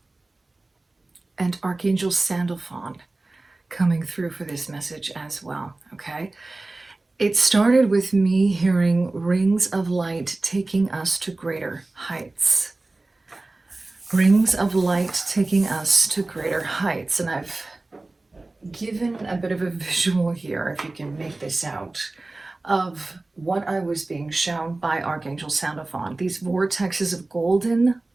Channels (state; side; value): quieter; left; 3.1 dB